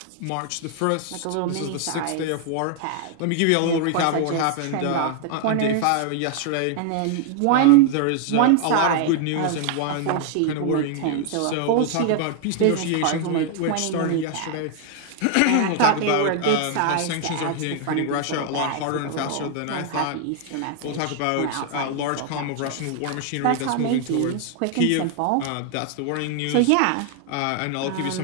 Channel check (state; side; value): different; both; correlation 0.00